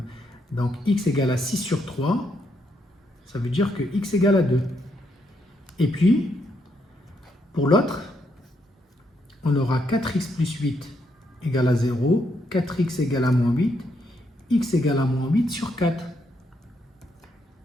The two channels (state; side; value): normal; both; correlation 0.77